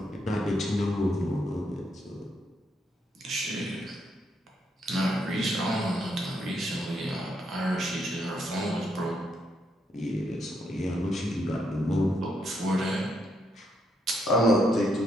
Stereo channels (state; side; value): normal; both; correlation 0.77